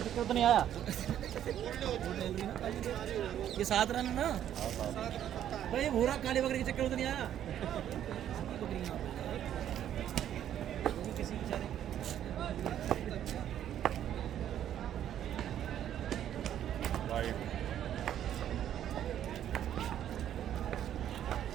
चक्कर तो नहीं आया। वो टहली ना काली। ये 7 रन है ना भाई, भूरा काली बकरी के चक्कर तो नहीं आया। बकरी यहाँ पे है। वो भी किसी बेचारे राइट।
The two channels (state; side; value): quieter; left; 10.7 dB